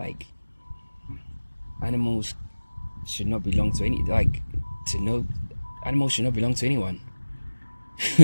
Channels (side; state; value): both; inverted; correlation -1.00